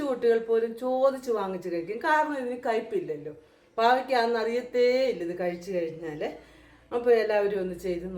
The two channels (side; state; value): both; identical; correlation 1.00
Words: കുട്ടികൾ പോലും ചോദിച്ച് വാങ്ങിച്ച് കഴിക്കും. കാരണം ഇതിന് കയ്പില്ലല്ലോ. പാവയ്ക്കാന്ന് അറിയത്തേ ഇല്ല ഇത് കഴിച്ചു കഴിഞ്ഞാൽ. അപ്പോൾ എല്ലാവരും ഒന്ന് ചെയ്ത്